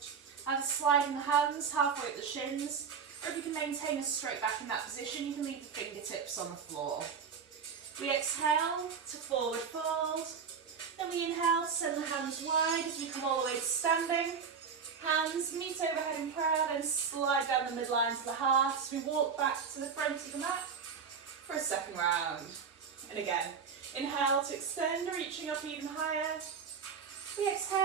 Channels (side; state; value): left; quieter; 6.3 dB